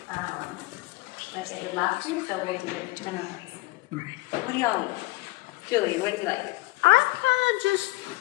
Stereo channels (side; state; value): right; quieter; 20.3 dB